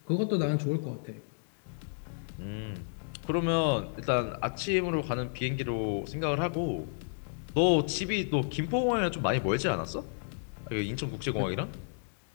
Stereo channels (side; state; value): right; silent; digital silence